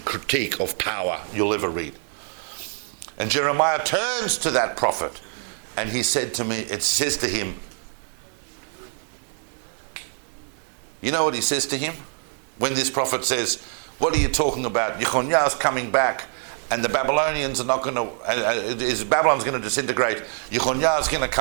critique of power you'll ever read. And Jeremiah turns to that prophet and it says to him, you know what he says to him? When this prophet says, what are you talking about? Yechoniah's coming back. And the Babylonians are not going to, Babylon's going to disintegrate. Yechoniah's going to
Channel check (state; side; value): silent; left; 58 dB below the other